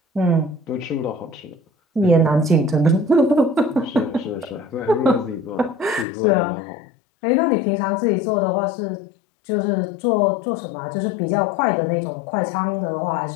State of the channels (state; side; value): drops out; right; at 6.1 s